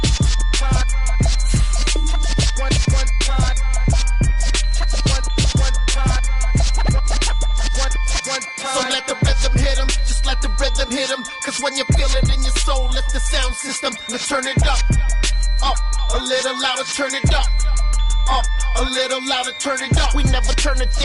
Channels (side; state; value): both; identical; correlation 1.00